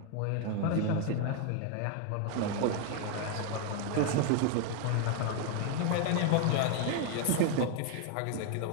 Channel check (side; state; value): both; different; correlation 0.00